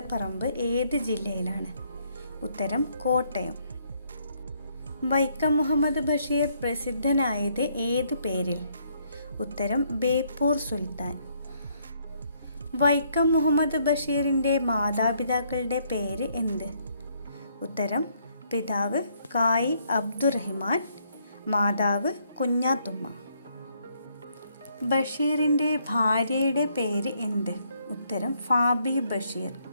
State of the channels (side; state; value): both; inverted; correlation -0.70